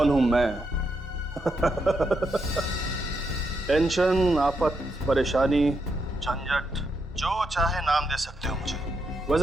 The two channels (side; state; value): both; normal; correlation 0.81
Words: हूं मैं? टेंशन, आफत, परेशानी, झंझट, जो चाहे नाम दे सकते हो मुझे।